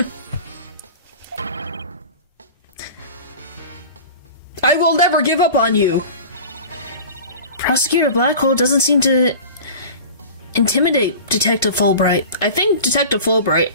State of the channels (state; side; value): inverted; both; correlation -0.37